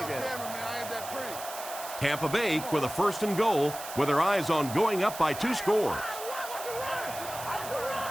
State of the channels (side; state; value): right; noise; hiss, 11 dB below the sound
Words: Tampa Bay with a first and goal with their eyes on going up by 2 scores.